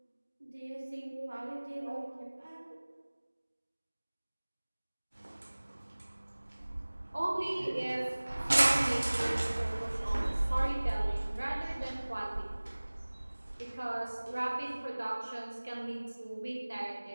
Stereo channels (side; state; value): both; inverted; correlation -1.00